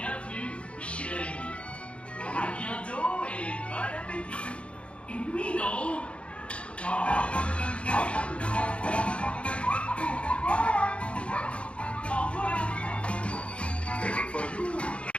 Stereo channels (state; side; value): late; right; 0.060 ms